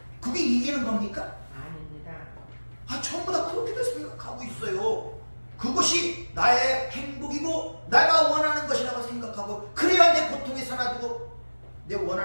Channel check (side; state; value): both; inverted; correlation -1.00